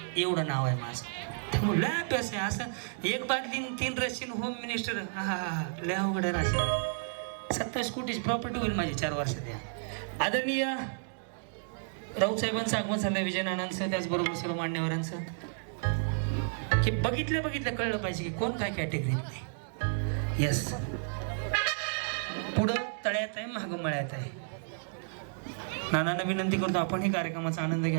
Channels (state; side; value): silent; left; digital silence